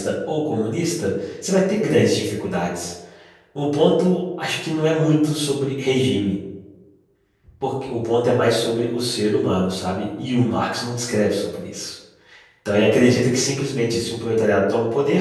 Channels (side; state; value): both; identical; correlation 1.00